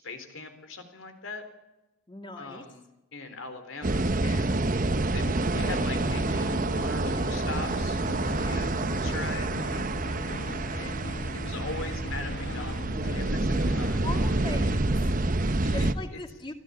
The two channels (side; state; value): both; normal; correlation 0.63